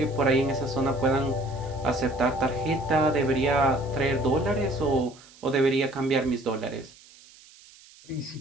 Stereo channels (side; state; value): right; noise; hiss, 24 dB below the sound